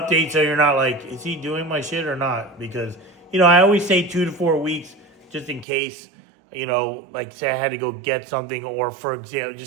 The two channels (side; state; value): left; drops out; at 5.7 s